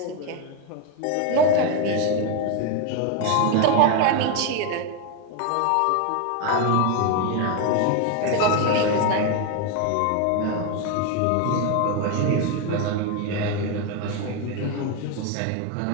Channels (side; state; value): both; different; correlation 0.02